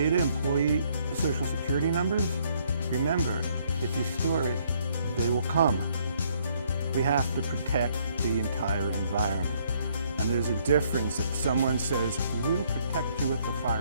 employee social security numbers? Remember, if you store it, they will come. We have to protect the entire environment. And there's a difference if someone says, we'll protect you with the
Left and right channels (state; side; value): inverted; both; correlation -0.67